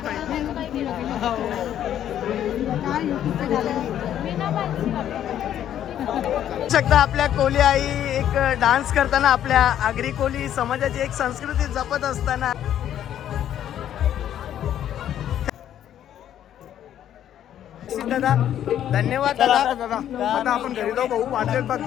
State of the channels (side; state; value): right; quieter; 10.8 dB